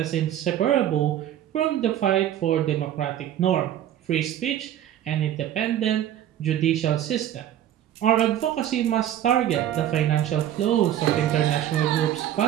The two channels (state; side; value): quieter; left; 11.3 dB